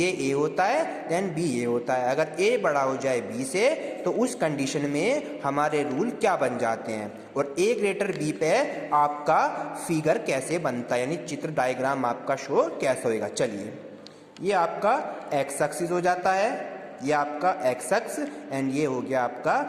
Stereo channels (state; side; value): identical; both; correlation 1.00